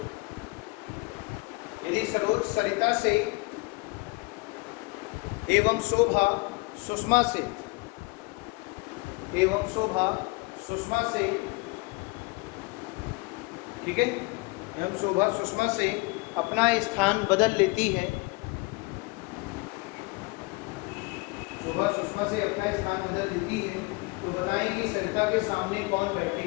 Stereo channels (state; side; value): quieter; right; 26.2 dB